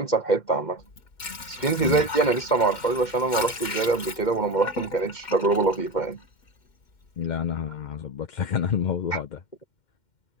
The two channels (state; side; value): late; right; 2.1 ms